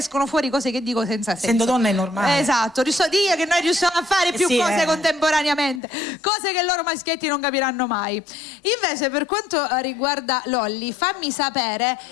fuori cose che dico senza senso. Essendo donna è normale. Esatto, so dire che noi riusciamo a fare più sì, cose contemporaneamente, cose che loro maschietti non capiranno mai. Invece per quanto riguarda Lolli, fammi sapere,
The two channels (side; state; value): right; drops out; at 5.8 s